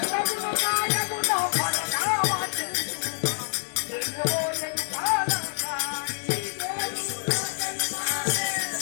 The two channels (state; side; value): silent; right; 60 dB below the other